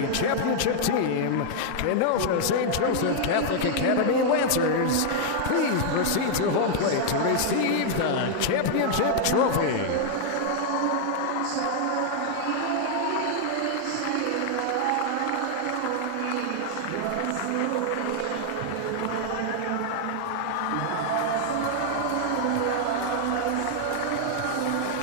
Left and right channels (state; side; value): different; both; correlation -0.01